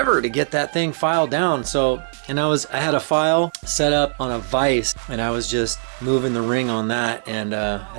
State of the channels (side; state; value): left; silent; 63 dB below the other